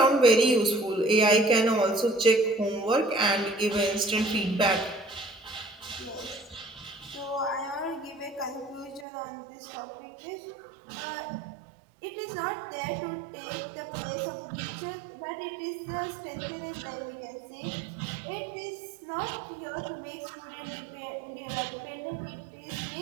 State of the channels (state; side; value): drops out; left; at 9.1 s